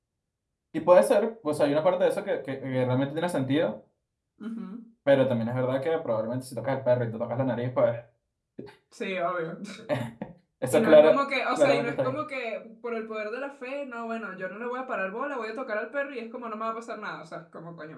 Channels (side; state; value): both; identical; correlation 1.00